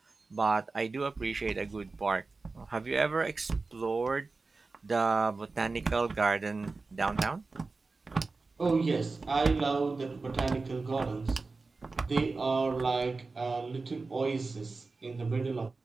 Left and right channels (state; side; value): quieter; left; 3.9 dB